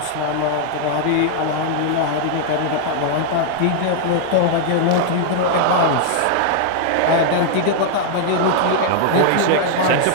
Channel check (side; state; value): both; different; correlation -0.01